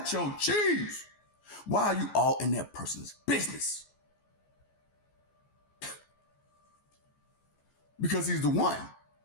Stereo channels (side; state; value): right; late; 14 ms